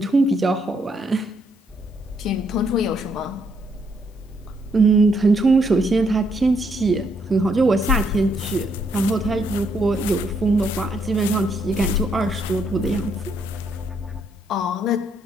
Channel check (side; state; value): both; normal; correlation 0.74